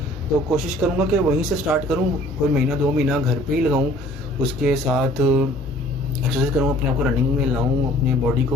तो कोशिश करूँगा कि वहीं से स्टार्ट करूँ, कोई महीना 2 महीना घर पे ही लगाऊँ, उसके साथ एक्सरसाइज करूँ, अपने आप को रनिंग में लाऊँ, अपनी बॉडी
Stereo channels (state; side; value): normal; both; correlation 0.53